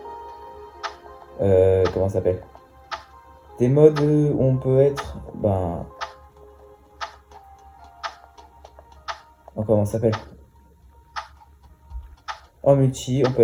comment ça s'appelle? Des modes où on peut être... comment ça s'appelle? En multi, on peut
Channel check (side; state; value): both; identical; correlation 1.00